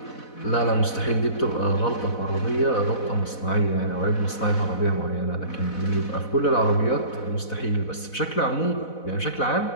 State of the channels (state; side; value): late; right; 4.0 ms